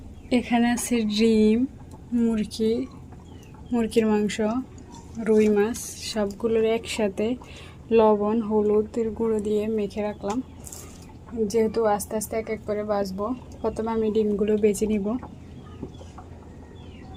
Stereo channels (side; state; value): both; identical; correlation 1.00